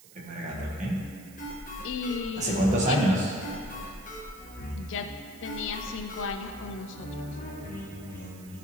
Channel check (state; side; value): noise; right; hiss, 21 dB below the sound